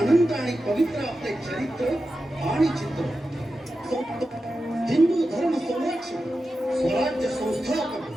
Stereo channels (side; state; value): both; normal; correlation 0.91